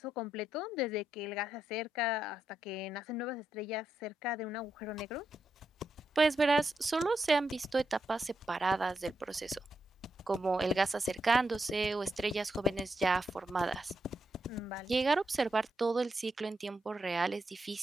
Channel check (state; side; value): normal; both; correlation 0.83